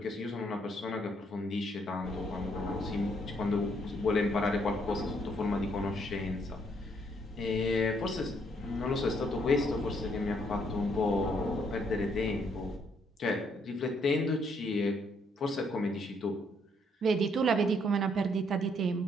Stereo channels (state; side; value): normal; both; correlation 0.70